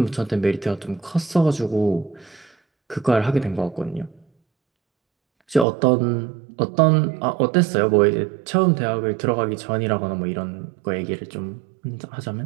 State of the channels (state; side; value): drops out; left; at 5.7 s